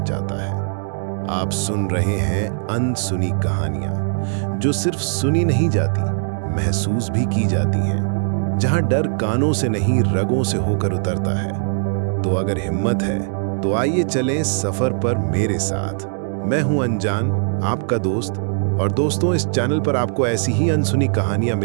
जाता है। आप सुन रहे हैं अनसुनी कहानियां, जो सिर्फ सुनी नहीं जाती, महसूस भी की जाती हैं। जहां डर कानों से नहीं, रगों से होकर उतरता है। तो अगर हिम्मत है तो आइए चलें सफर पर मेरे साथ। मैं हूं अनजान, आपका दोस्त। और दोस्तों, इस चैनल पर आपको ऐसी ही अनसुनी कहानियां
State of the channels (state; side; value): silent; left; digital silence